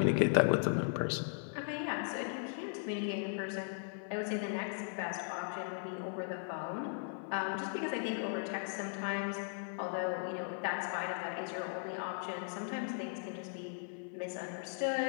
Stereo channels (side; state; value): right; silent; 53 dB below the other